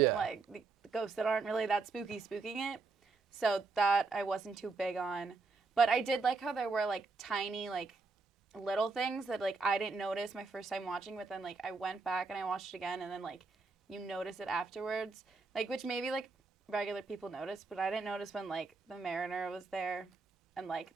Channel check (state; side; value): quieter; left; 4.2 dB